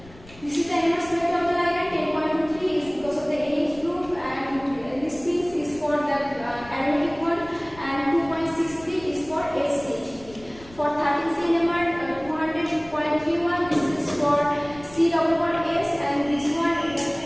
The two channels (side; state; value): left; noise; rumble, 21 dB below the sound